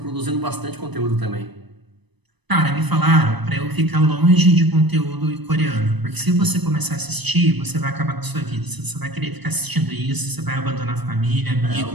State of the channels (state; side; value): late; left; 1.0 ms